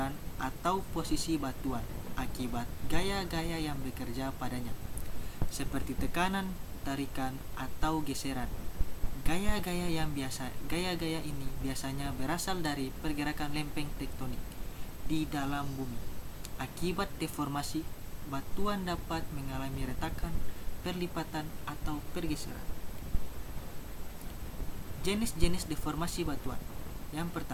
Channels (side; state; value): both; identical; correlation 1.00